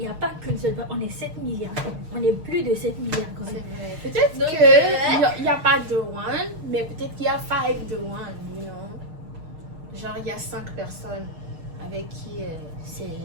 n'y a pas qu'une seule personne, on est 7 milliards. On est plus de 7 milliards quand C'est même. vrai. Peut-être Donc, qu'il n'y a pas de one, mais peut-être qu'il y a 5 de one, you know? Genre, il y a 5 personnes avec qui c'est...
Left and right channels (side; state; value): left; late; 6.5 ms